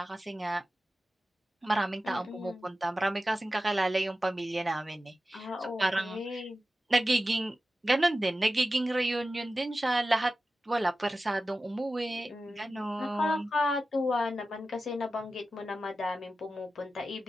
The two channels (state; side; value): normal; both; correlation 0.94